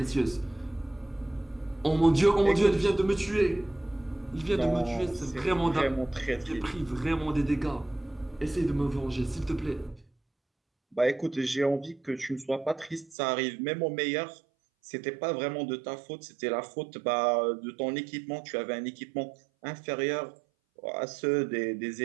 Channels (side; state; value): left; drops out; at 13.2 s